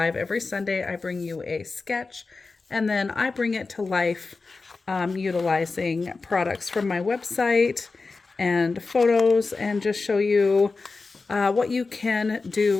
every Sunday. I bring you a sketch, and then I bring it to life utilizing products from my website and photos, and just show you what you can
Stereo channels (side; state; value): right; quieter; 4.0 dB